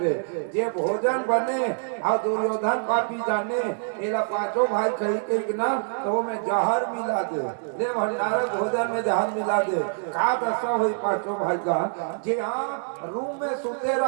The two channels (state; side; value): silent; left; digital silence